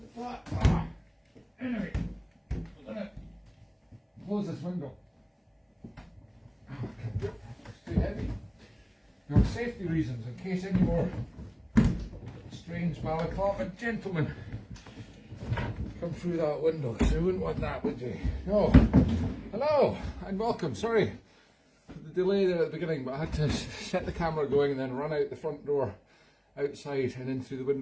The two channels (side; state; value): both; identical; correlation 1.00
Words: flat. Anyway, I'm gonna close this window. It's too heavy. For safety reasons, in case any more strange Balaclava gentlemen come through that window, because you wouldn't want that, would you? No. Hello and welcome. Sorry for the delay there at the beginning, but I had to set the camera going and then run out the front door outside and in through the